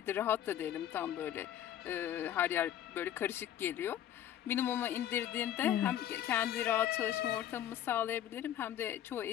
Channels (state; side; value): quieter; right; 11.1 dB